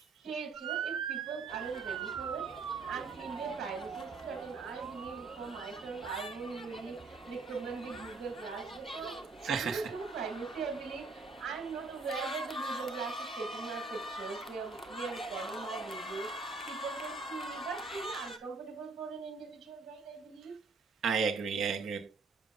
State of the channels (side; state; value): left; quieter; 4.3 dB